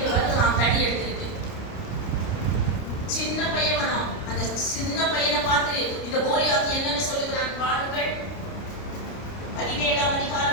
வருகிறான், தடி எடுத்துக்கிட்டு. சின்ன பையன் வரான். அந்த சின்ன பையனை பார்த்து இந்த கோலியாத் என்னன்னு சொல்லுகிறான் பாருங்கள். 17ஆம்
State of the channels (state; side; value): late; right; 29 ms